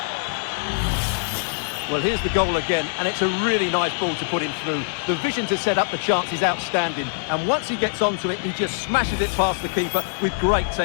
Well, here's the goal again, and it's a really nice ball to put him through. The vision to set up the chance is outstanding, and once he gets onto it, he just smashes it past the keeper with great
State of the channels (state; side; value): silent; right; digital silence